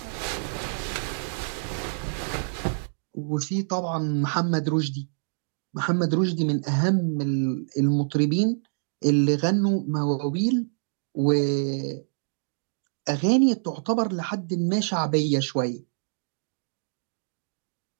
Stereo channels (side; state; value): left; silent; digital silence